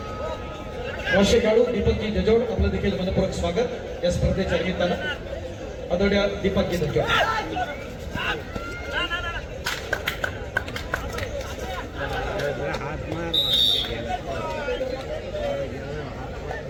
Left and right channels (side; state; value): both; identical; correlation 1.00